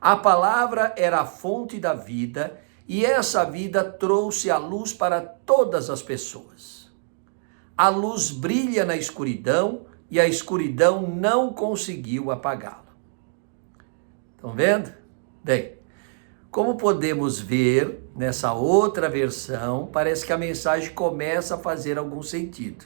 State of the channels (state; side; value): silent; left; digital silence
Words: A palavra era a fonte da vida e essa vida trouxe a luz para todas as pessoas. A luz brilha na escuridão e a escuridão não conseguiu apagá-la. Estão vendo? Bem, como podemos ver nessa outra versão, parece que a mensagem começa a fazer algum sentido.